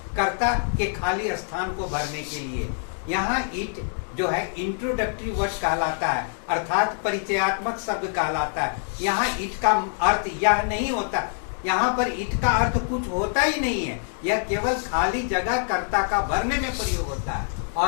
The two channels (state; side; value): silent; right; 62 dB below the other